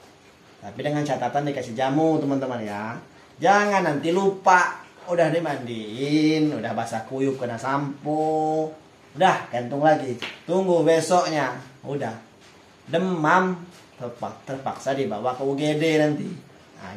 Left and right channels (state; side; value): identical; both; correlation 1.00